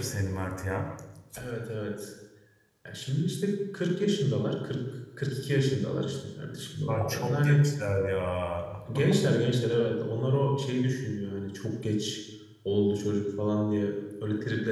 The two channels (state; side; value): identical; both; correlation 1.00